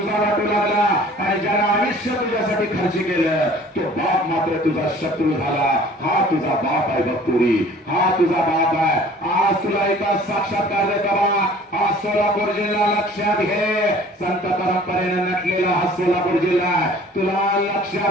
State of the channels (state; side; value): normal; both; correlation 0.50